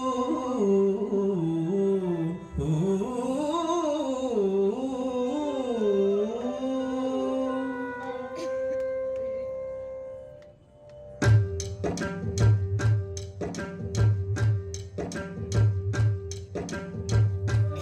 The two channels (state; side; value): identical; both; correlation 1.00